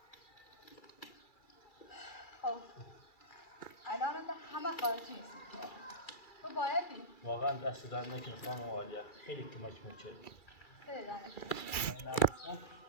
خلاصی همه خارج نیست تو باید بی واقعا دست در نکن خانم عالیه، خیلی کمک می‌کنی. خیلی دانش من نبودم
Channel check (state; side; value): late; right; 2.3 ms